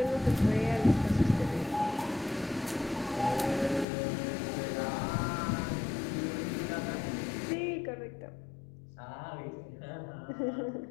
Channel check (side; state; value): right; drops out; at 3.9 s